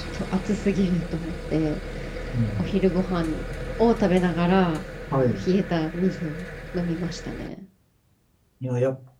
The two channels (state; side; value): identical; both; correlation 1.00